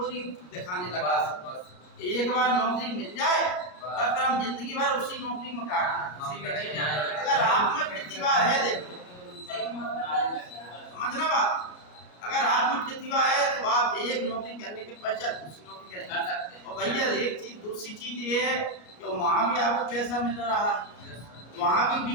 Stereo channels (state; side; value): late; right; 33 ms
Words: दिखाने लगा। एक बार नौकरी मिल जाए तो हम जिंदगी भर उसी नौकरी में काटना। अगर आप में प्रतिभा है, देखो समझना बात, अगर आप में प्रतिभा है तो आप एक नौकरी करने के पश्चात दूसरी नौकरी करेंगे। और भैया एक चीज, दूसरी चीज ये है कि वहाँ भी आपको पैसा मिल रहा है, वहाँ भी